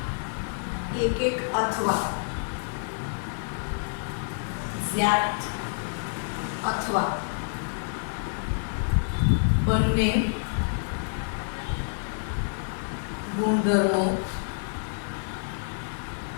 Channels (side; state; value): right; silent; 59 dB below the other